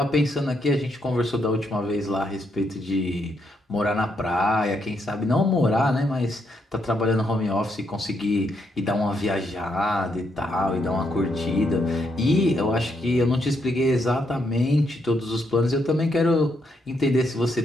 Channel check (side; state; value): both; normal; correlation 0.77